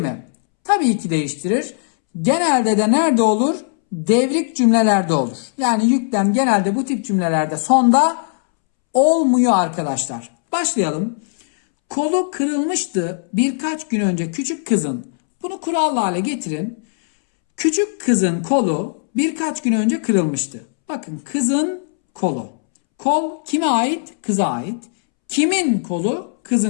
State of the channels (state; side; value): silent; right; 67 dB below the other